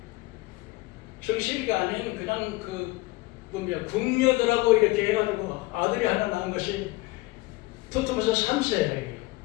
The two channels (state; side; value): quieter; right; 21.5 dB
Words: 정실이가 아닌 그냥 궁녀들하고 이렇게 해가지고 아들이 하나 낳은 것이 투트모세 3세예요.